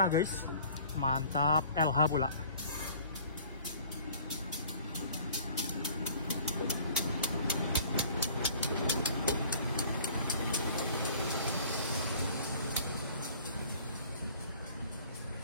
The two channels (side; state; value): both; inverted; correlation -0.51